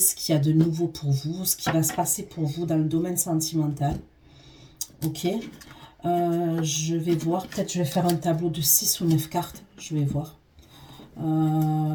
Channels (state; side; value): identical; both; correlation 1.00